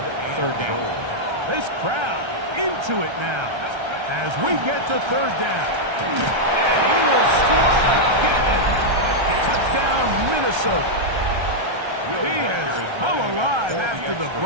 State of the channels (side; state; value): left; late; 1.3 ms